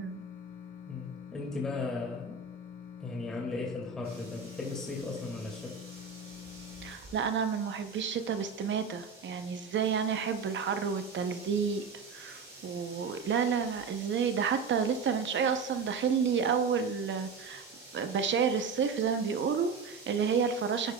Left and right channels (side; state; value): left; quieter; 5.1 dB